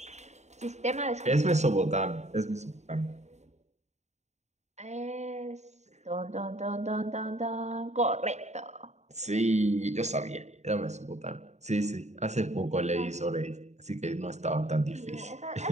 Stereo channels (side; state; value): left; late; 0.33 ms